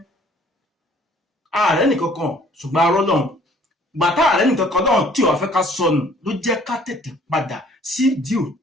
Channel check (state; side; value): normal; both; correlation 0.57